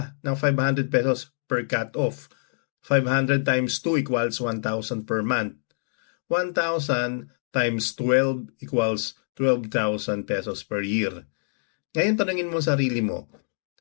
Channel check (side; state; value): right; silent; digital silence